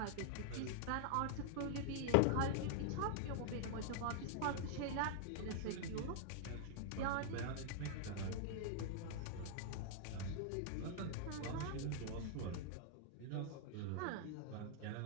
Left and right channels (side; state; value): both; different; correlation -0.01